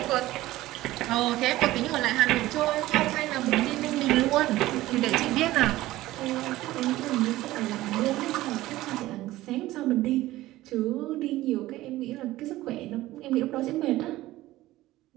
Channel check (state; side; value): quieter; left; 16.6 dB